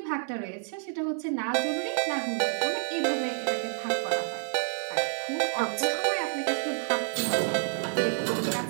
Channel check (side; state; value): left; silent; 59 dB below the other